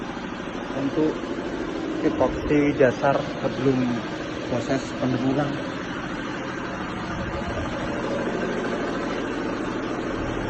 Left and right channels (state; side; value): identical; both; correlation 1.00